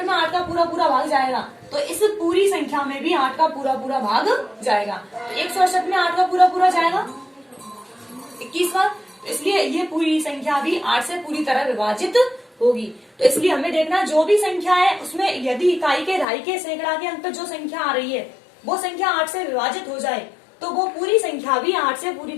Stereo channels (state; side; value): drops out; right; at 16.2 s